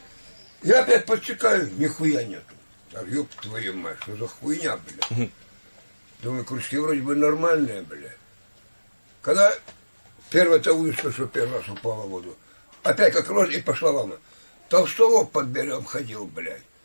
Я опять подсекаю, нихуя нету. А ёб твою мать, что за хуйня, бля. Думаю, крючки вроде бы нормальные, бля. Когда первая-то удочка, что первый раз упала в воду, опять как рожь и пошла волна. Толстолоб под берегом ходил, блядь.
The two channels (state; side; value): inverted; both; correlation -1.00